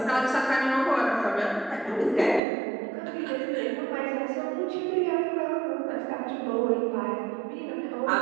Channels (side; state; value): left; drops out; at 2.4 s